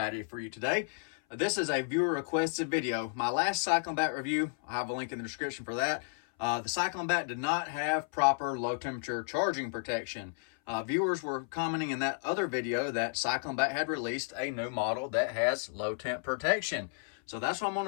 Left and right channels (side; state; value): right; silent; 56 dB below the other